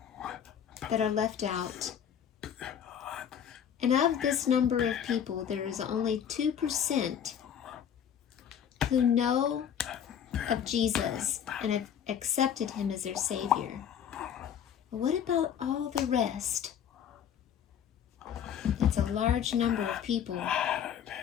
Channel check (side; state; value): right; quieter; 8.8 dB